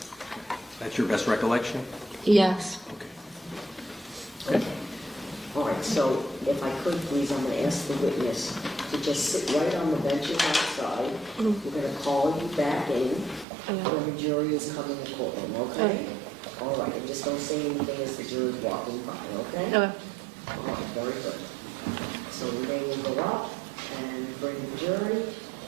That's your best recollection? Yes. Okay. All right, so if I could, please, I'm going to ask the witness to just sit right on the benches outside. We're going to call you back in when the jury is coming to courtroom, okay? All right, and just don't say anything as the jury's walking by, okay? Okay. All right, very good. So Renee will go up and bring the jury,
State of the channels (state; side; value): drops out; left; at 13.5 s